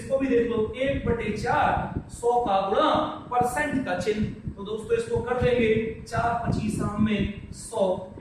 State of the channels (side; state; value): both; identical; correlation 1.00